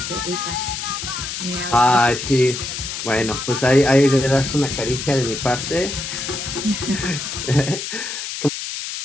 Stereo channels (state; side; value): noise; left; hiss, 6 dB below the sound